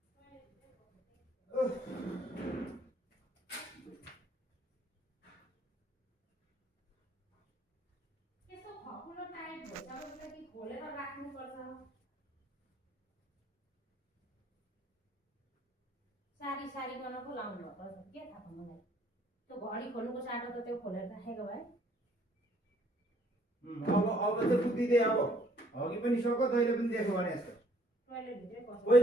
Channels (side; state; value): both; normal; correlation 0.63